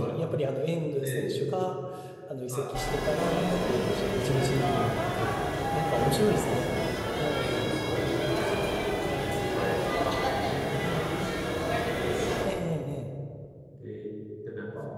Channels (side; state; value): both; identical; correlation 1.00